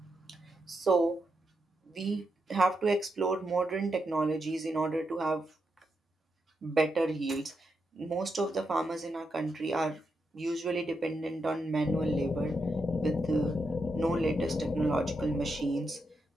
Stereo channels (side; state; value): both; normal; correlation 0.84